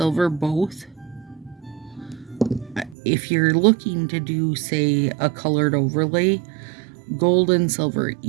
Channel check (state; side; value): drops out; left; at 3.0 s